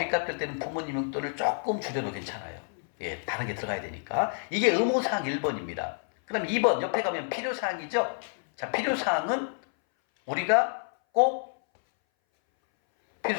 갚을 때는 부모님 용돈을 조금 줄여도 괜찮아요. 예, 다른 게 들어가야 되니까. 이게 의무사항 1번입니다. 그 다음에 2번, 옆에 가면 필요사항이죠? 자, 필요사항은 우리가 꼭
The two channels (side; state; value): right; silent; 59 dB below the other